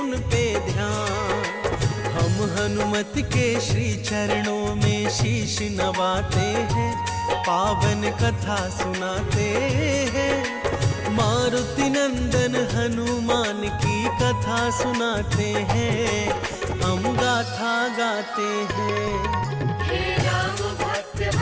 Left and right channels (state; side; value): identical; both; correlation 1.00